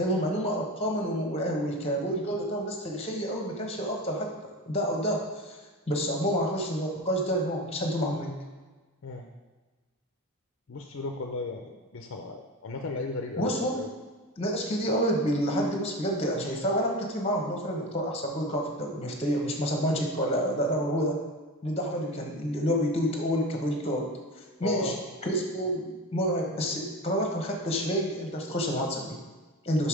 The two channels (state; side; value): normal; both; correlation 0.28